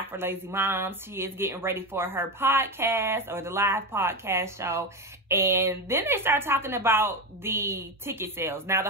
For Lazy Moms. She is getting ready for her podcast, or the live podcast show. And then they start talking about the ticket sales. Now, the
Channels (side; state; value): both; normal; correlation 0.16